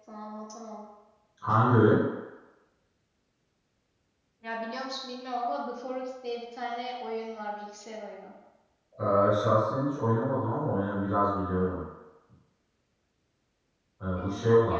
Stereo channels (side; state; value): both; identical; correlation 1.00